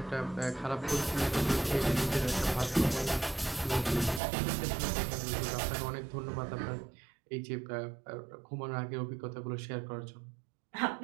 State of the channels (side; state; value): left; drops out; at 4.2 s